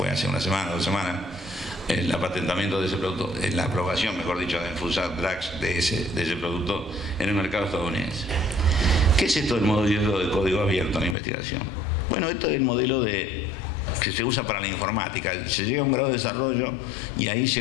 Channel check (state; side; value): drops out; right; at 11.2 s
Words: hace una semana, 2 semanas, el patentamiento de ese producto, la aprobación, mejor dicho, de Food Drugs de ese producto en el mercado estadounidense. ¿Qué es esto del modelo de código abierto en la investigación? Bueno, esto es el modelo que se usa para la informática. Se llega a un grado de desarrollo y ahí